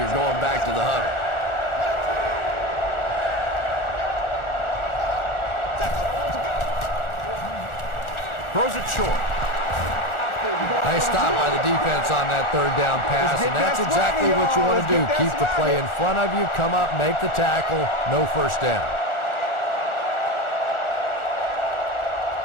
going back to the huddle. Throws it short. Nice stop by the defense on that third down pass, and that's exactly what you want to do. Keep the play in front of you, come up, make the tackle, no first down.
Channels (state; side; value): late; right; 1.4 ms